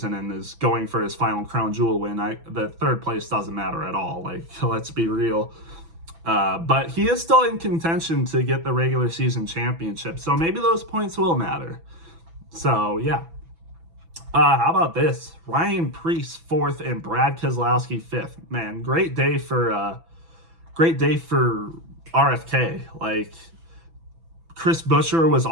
and is going for his final crown jewel win? The third place doesn't matter at all. Like, let's be real. But he is still in contention to get the regular season championship, so maybe those points will matter. So, yeah. How about this? Ryan Preece 4th and Brad Keselowski 5th. Man, great day for RFK. Like, Chris Buescher was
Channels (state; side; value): late; left; 6.0 ms